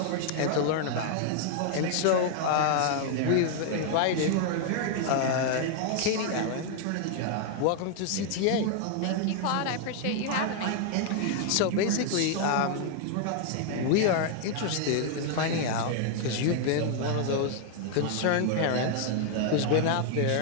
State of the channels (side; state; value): both; different; correlation 0.00